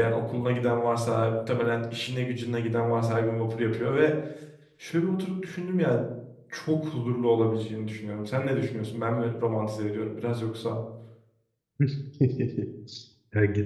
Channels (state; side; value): identical; both; correlation 1.00